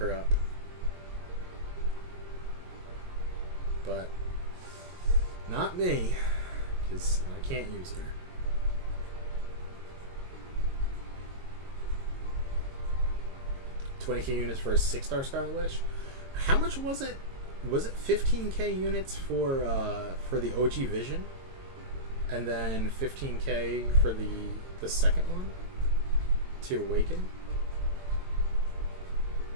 up. But not me, because I can't use her. $20K units for a 6-star Scarlet Witch. How much was it? Was it 15K units for the OG Vision, and then 15K for the second one to Awaken?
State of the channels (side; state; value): left; late; 22 ms